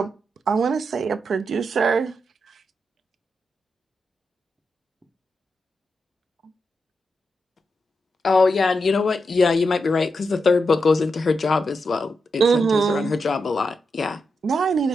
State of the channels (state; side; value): normal; both; correlation 0.86